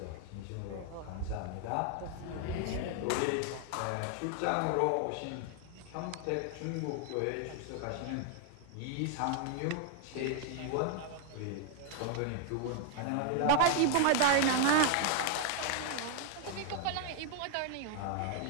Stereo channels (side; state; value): both; different; correlation 0.00